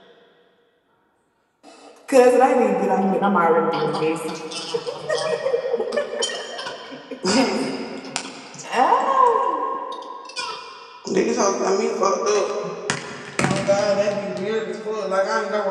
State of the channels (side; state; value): both; identical; correlation 1.00